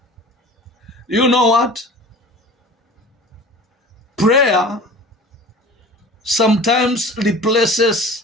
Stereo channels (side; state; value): both; normal; correlation 0.41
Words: You know what? Prayer sometimes